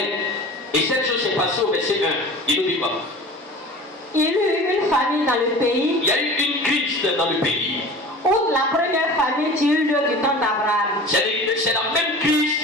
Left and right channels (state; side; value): normal; both; correlation 0.38